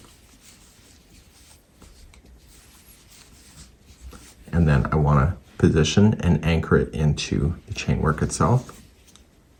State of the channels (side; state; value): both; identical; correlation 1.00